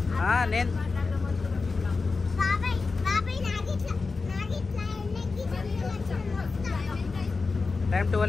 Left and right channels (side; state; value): right; quieter; 4.2 dB